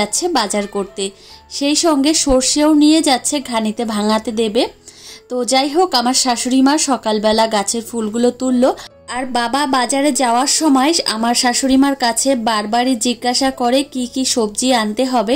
বাজার করতে, সেই সঙ্গে সর্ষেও নিয়ে যাচ্ছে ঘানিতে ভাঙাতে দেবে। তো যাই হোক, আমার শাশুড়ি মা সকালবেলা গাছের ফুলগুলো তুললো আর বাবা বাজারে যাওয়ার সময় আমার শাশুড়ি মার কাছে বারবারই জিজ্ঞাসা করে কি কি সবজি আনতে হবে।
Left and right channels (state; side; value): identical; both; correlation 1.00